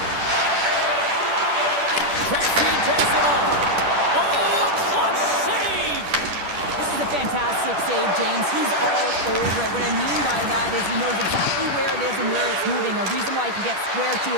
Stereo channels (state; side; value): late; left; 10 ms